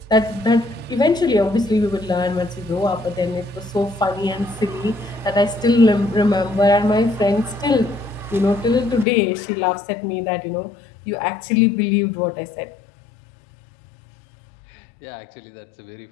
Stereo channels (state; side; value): drops out; right; at 9.1 s